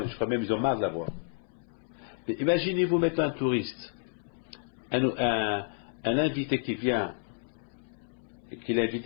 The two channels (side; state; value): right; silent; 57 dB below the other